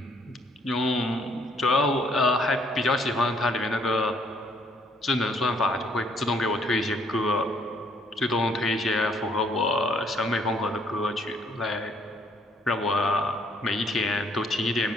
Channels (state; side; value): normal; both; correlation 0.66